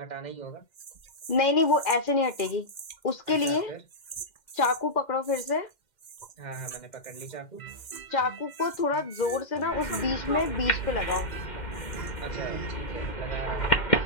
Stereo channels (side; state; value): right; late; 2.1 ms